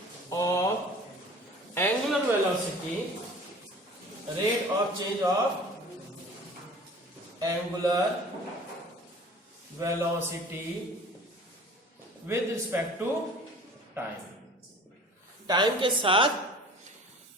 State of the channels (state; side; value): normal; both; correlation 0.45